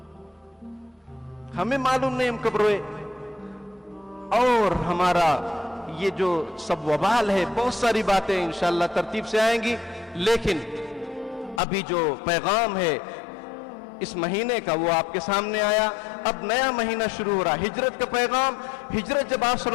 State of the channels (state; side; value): drops out; right; at 11.6 s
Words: ہمیں معلوم نہیں ہم کب روئے، اور ہمارا یہ جو سب وبال ہے، بہت ساری باتیں انشاءاللہ ترتیب سے آئیں گی، لیکن ابھی جو پیغام ہے اس مہینے کا وہ آپ کے سامنے آیا۔ اب نیا مہینہ شروع ہو رہا، ہجرت کا پیغام۔ ہجرت جب آپ صلی